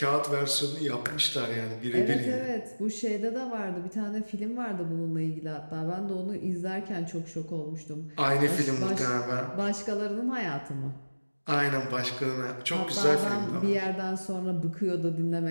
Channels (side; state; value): both; inverted; correlation -1.00